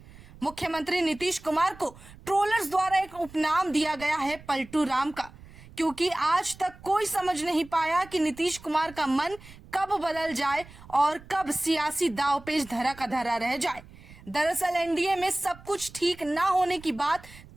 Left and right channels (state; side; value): noise; right; rumble, 20 dB below the sound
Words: मुख्यमंत्री नीतीश कुमार को ट्रोलर्स द्वारा एक उपनाम दिया गया है पलटू राम का, क्योंकि आज तक कोई समझ नहीं पाया कि नीतीश कुमार का मन कब बदल जाए और कब सियासी दांवपेच धरा का धरा रह जाए। दरअसल एनडीए में सब कुछ ठीक ना होने की बात